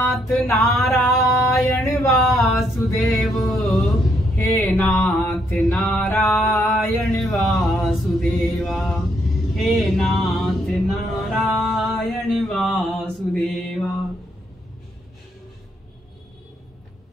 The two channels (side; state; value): both; normal; correlation 0.73